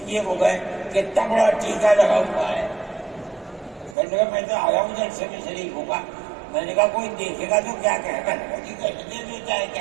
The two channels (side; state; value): left; drops out; at 4.0 s